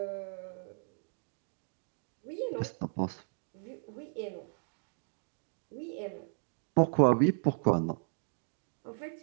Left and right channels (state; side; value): silent; left; digital silence